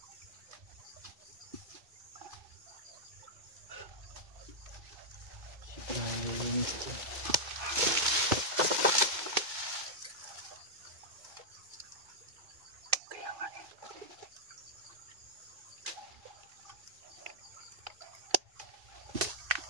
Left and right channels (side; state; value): left; late; 2.2 ms